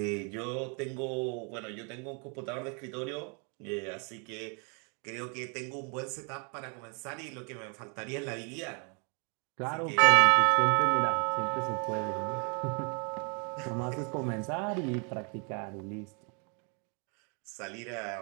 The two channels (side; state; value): left; quieter; 36.6 dB